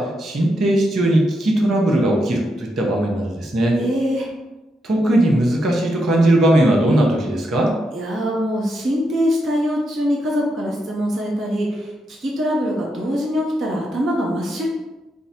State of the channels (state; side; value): normal; both; correlation 0.82